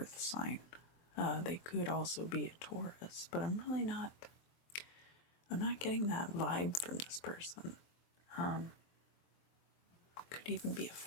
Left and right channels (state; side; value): late; right; 23 ms